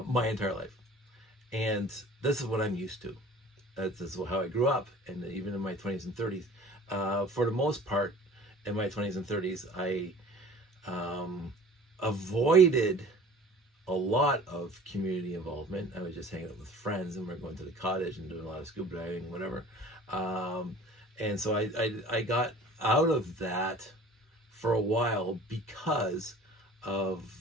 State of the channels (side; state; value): both; normal; correlation 0.46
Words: entire life, and this is what I'm used to. This is how I grew up, and even in my 20s and 30s. For the most part, in my 20s and 30s, I avoided a lot of community involvement. I was just hanging out with friends, and we're going to the cottage and doing a lot of scuba diving, whatever. And so I got out of that for a while because of